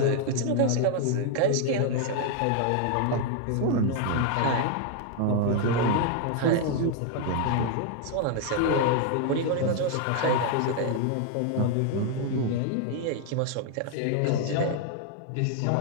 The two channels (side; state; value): both; different; correlation 0.00